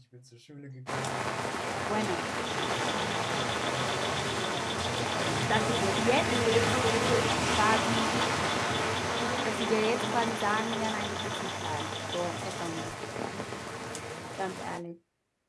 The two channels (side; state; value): both; identical; correlation 1.00